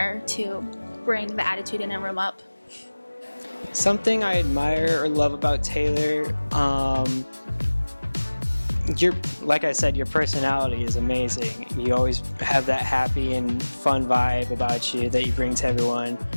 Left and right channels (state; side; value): inverted; both; correlation -1.00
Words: to bring the attitude in a room up. Something I admire or love about Taylor, like I said, your personality is amazing. You always have that happy and fun vibe about you that you bring to everyone.